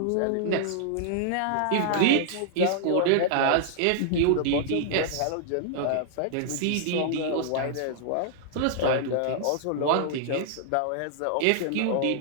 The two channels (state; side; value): different; both; correlation -0.01